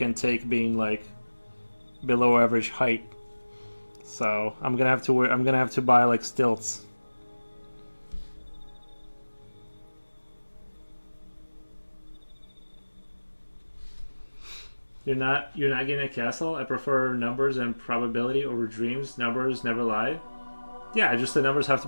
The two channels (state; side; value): inverted; both; correlation -1.00